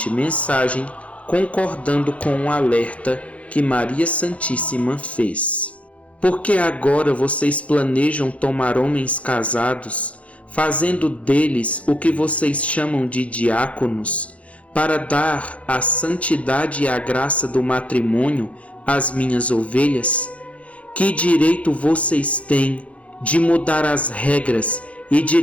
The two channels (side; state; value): right; late; 0.064 ms